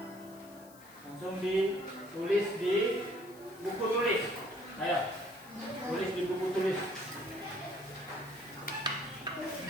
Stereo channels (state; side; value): noise; left; hiss, 22 dB below the sound